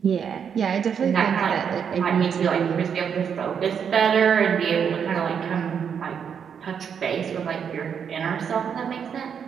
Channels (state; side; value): quieter; left; 7.4 dB